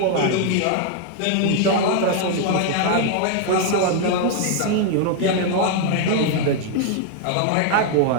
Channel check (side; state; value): both; different; correlation 0.00